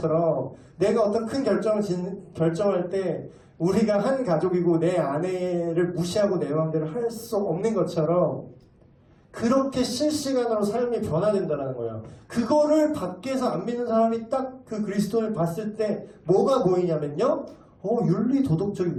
내가 어떤 큰 결정할 때 우리가 한 가족이고 내 아내를 무시하고 내 마음대로 할 수 없는 것처럼 그렇게 실시간으로 삶이 변화된다는 거예요. 그거를 밖에서 안 믿는 사람이 딱 그 그리스도를 봤을 때 뭐가 보이냐면요. 윤리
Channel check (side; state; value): both; identical; correlation 1.00